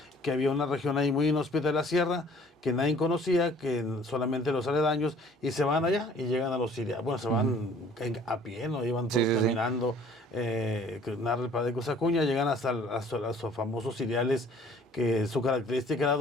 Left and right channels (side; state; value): both; normal; correlation 0.54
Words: que había una región ahí muy inhóspita de la sierra, que nadie conocía, que solamente los aledaños, y se van allá y llegan a los sirianos. Bueno, se van a pie, ¿no? Iban todos caminando, que narra el padre Cosacuña, llegan hasta los famosos cereales, que su característica era